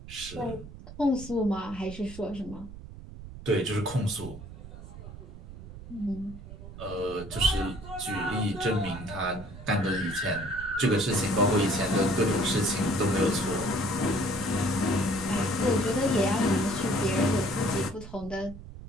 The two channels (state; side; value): noise; right; rumble, 14 dB below the sound